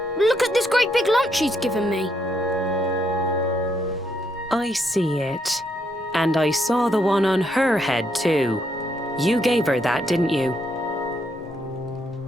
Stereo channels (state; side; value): normal; both; correlation 0.75